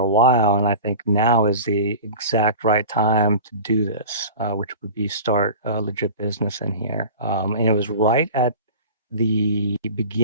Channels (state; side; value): inverted; both; correlation -0.36